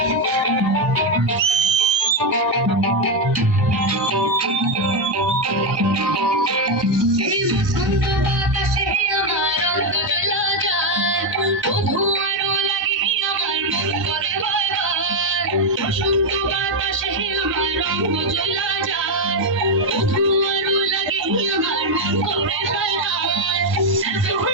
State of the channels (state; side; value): late; left; 1.1 ms